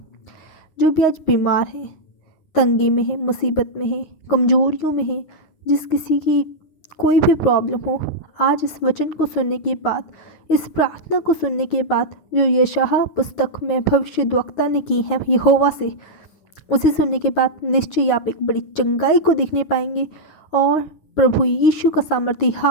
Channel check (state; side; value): late; right; 9.5 ms